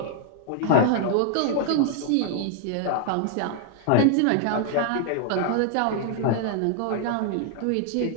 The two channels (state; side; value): different; both; correlation 0.00